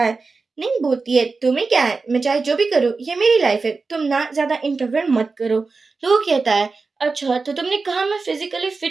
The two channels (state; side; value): quieter; left; 4.2 dB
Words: है। नहीं बोलती है, तुम्हें क्या है, मैं चाहे जो भी करूँ, ये मेरी लाइफ है, तुम ना ज्यादा इंटरफेयर मत करो। लोग कहता है, अच्छा तो तुमने कहा मैं फिजिकली